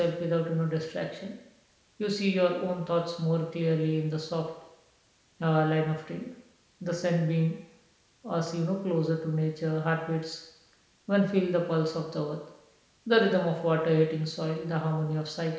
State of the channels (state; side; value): identical; both; correlation 1.00